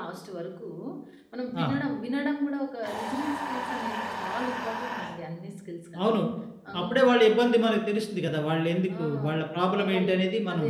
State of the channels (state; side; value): identical; both; correlation 1.00